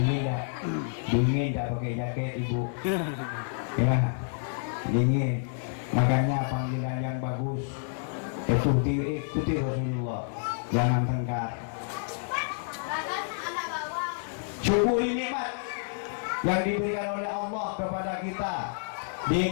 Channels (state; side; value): silent; right; 58 dB below the other